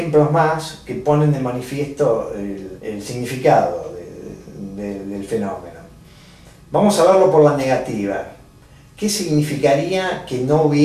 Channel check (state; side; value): identical; both; correlation 1.00